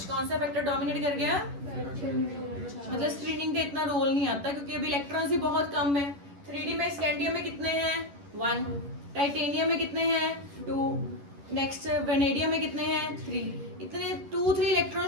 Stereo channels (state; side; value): late; left; 11 ms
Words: कौन सा फैक्टर डोमिनेट कर गया, मतलब स्क्रीनिंग का इतना रोल नहीं आता क्योंकि अभी इलेक्ट्रॉन्स ही बहुत कम है। 3D में स्कैंडियम में कितने हैं 1, टाइटेनियम में कितने हैं 2, नेक्स्ट वेनेडियम में कितने हैं 3। इतने 2-3 इलेक्ट्रॉन